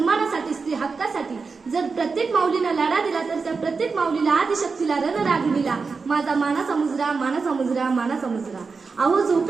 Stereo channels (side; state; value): left; quieter; 4.7 dB